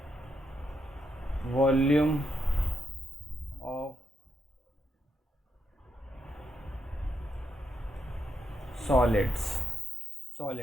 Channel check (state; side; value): normal; both; correlation 0.81